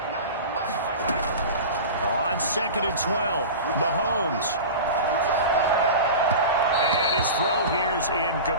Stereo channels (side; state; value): both; inverted; correlation -0.31